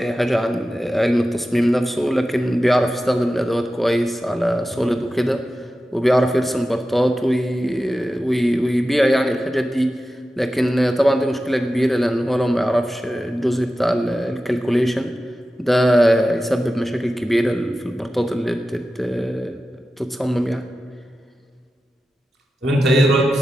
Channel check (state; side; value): normal; both; correlation 0.93